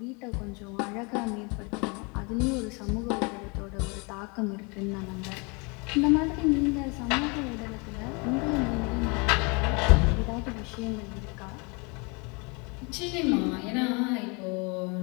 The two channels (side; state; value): right; quieter; 30.8 dB